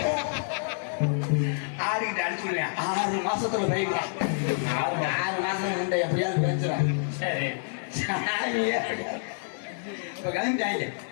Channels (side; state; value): right; silent; digital silence